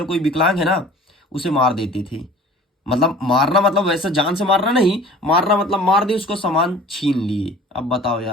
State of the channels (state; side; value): normal; both; correlation 0.46